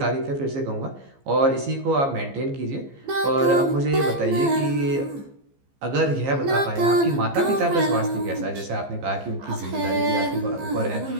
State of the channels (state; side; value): late; left; 15 ms